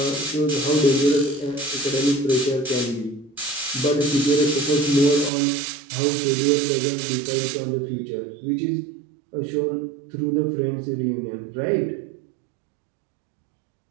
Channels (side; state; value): left; drops out; at 5.3 s